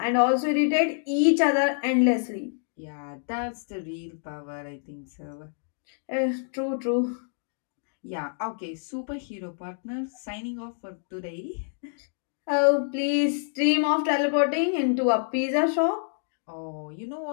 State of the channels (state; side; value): silent; right; digital silence